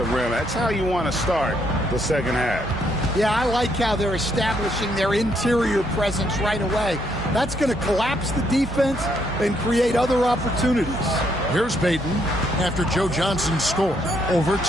rim. That's how you want to start the second half. Yeah, I like how they're establishing their interior presence right away. That's going to collapse the defense and create other opportunities. Here's Payton after Joe Johnson's score over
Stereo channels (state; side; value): normal; both; correlation 0.73